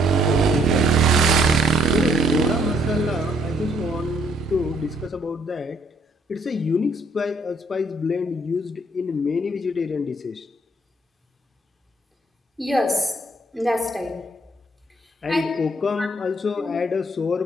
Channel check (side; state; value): both; normal; correlation 0.67